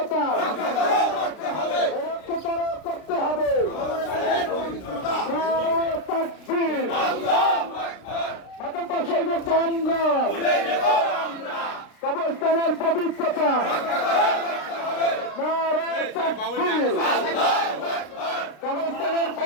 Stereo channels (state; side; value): late; right; 33 ms